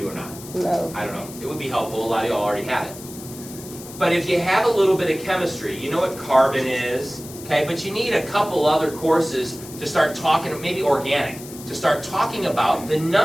or not. No. I don't know. It would be helpful. A lot of y'all already have it. But if you have a little bit of chemistry, you know what carbon is, okay? But you need a couple other courses to start talking, maybe organic, to start talking about the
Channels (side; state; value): left; noise; hiss, 15 dB below the sound